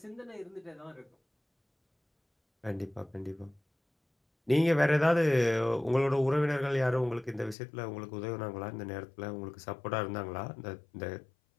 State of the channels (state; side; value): drops out; right; at 7.6 s